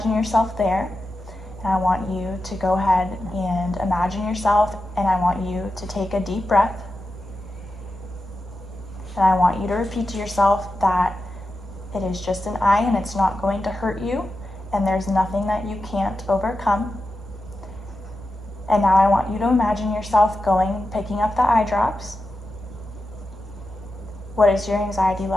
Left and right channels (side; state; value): both; normal; correlation 0.90